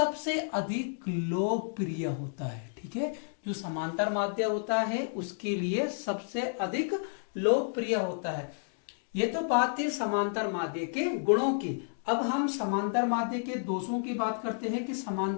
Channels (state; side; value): silent; right; digital silence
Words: अधिक लोकप्रिय होता है। ठीक है, जो समांतर माध्य होता है उसके लिए सबसे अधिक लोकप्रिय होता है। ये तो बात थी समांतर माध्य के गुणों की। अब हम समांतर माध्य के दोषों की बात करते हैं कि